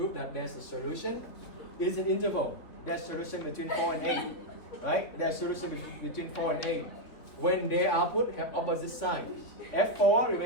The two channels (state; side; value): late; right; 3.4 ms